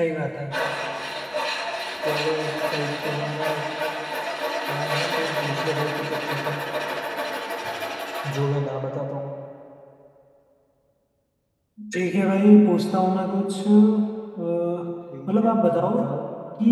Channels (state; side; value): identical; both; correlation 1.00